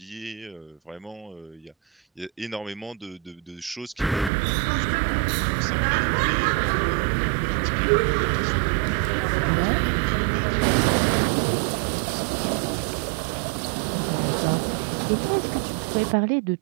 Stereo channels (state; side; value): drops out; left; at 4.3 s